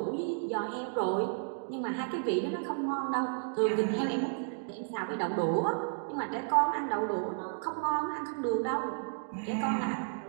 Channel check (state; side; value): silent; left; digital silence